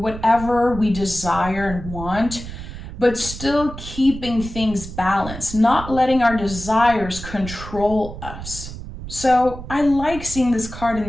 whatever we desire and want, but still keeping things balanced, not letting our desires control us. So I like seeing this card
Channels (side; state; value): right; noise; rumble, 11 dB below the sound